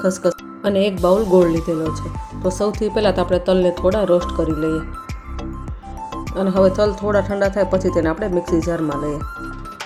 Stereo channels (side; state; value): both; identical; correlation 1.00